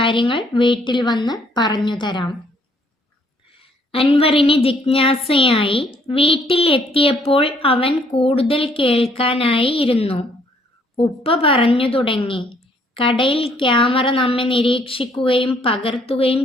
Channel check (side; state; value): both; normal; correlation 0.65